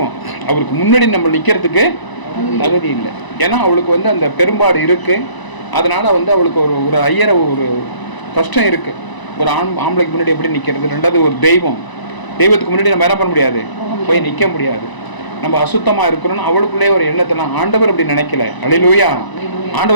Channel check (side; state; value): right; late; 1.0 ms